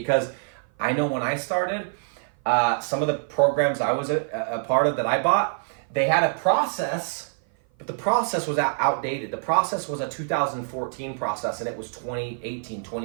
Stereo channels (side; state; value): left; silent; 55 dB below the other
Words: I know when I started, some of the programs I was a part of that I bought, they had a process, but the process was outdated. The process was a 2014 process, and it was 2018,